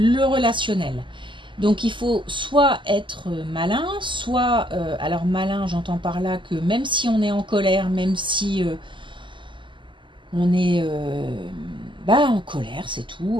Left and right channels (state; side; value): late; left; 0.24 ms